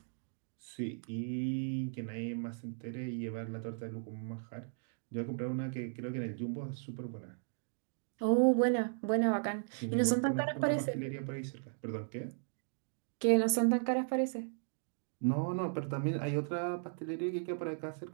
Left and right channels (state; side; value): silent; left; digital silence